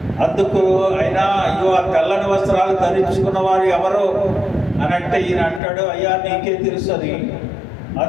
అందుకు ఆయన, అయ్యో ఆ తెల్లని వస్త్రాలు ధరించుకున్న వారు ఎవరు అని అంటే ఈయన అంటాడు, అయ్యా నీకే తెలుసు అని.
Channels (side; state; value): right; drops out; at 5.6 s